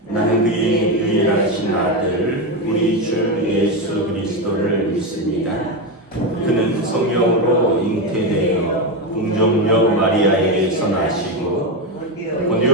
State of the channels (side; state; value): both; normal; correlation 0.11